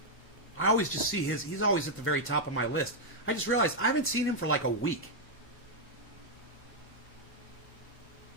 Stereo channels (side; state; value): both; normal; correlation -0.03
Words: I always just see he's always at the very top of my list. I just realized I haven't seen him for like a week.